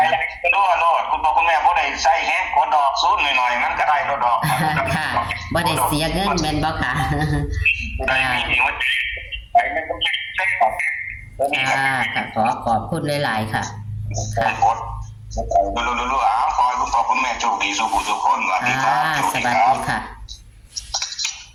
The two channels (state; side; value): identical; both; correlation 1.00